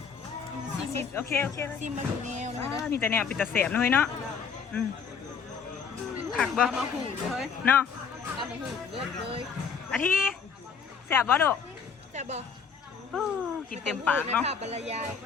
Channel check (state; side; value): quieter; right; 6.2 dB